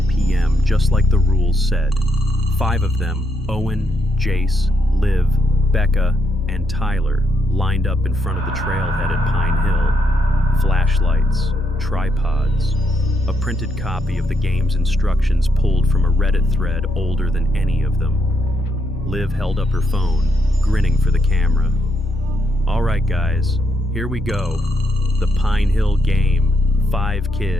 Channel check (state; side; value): normal; both; correlation 0.77